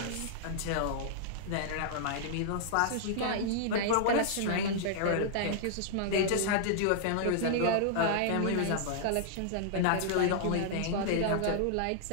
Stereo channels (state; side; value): different; both; correlation -0.01